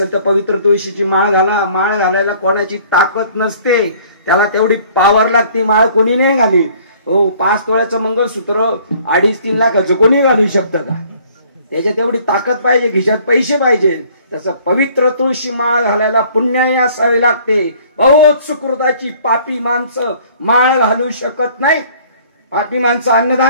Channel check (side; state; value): both; inverted; correlation -0.56